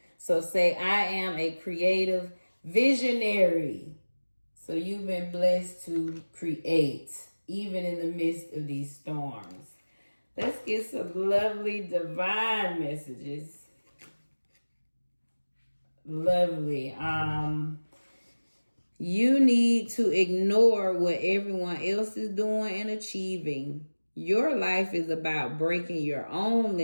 So say, I am a creative visionary. So you've been blessed to create, even in the midst of these storms. Let's get some lovely divine messages. Lovely. You need to ignore what everyone else is doing and achieving. Your life is about breaking your own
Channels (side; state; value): both; inverted; correlation -1.00